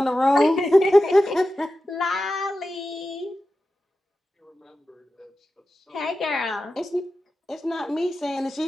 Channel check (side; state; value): both; normal; correlation 0.92